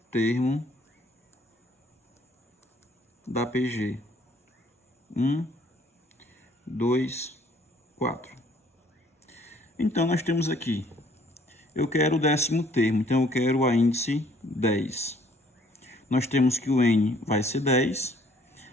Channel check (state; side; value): normal; both; correlation 0.61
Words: termo da PG. 1, 2, 4. Então, nós temos aqui, eu quero o 10º termo, então eu quero o índice 10. Nós temos que o N vai ser 10.